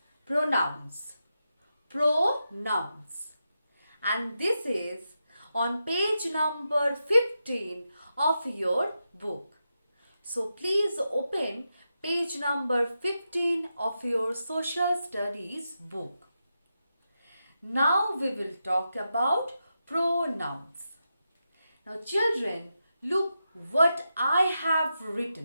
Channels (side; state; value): both; inverted; correlation -0.88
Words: Pronouns. Pronouns. And this is on page number 15 of your book. So please open page number 15 of your social studies book. Now we will talk about pronouns. Now children, look what I have